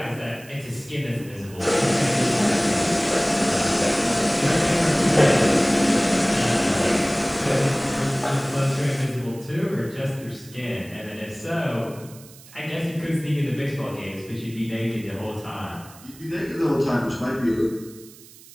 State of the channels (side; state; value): right; noise; hiss, 21 dB below the sound